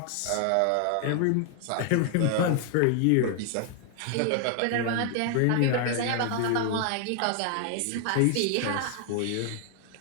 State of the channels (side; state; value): both; different; correlation 0.00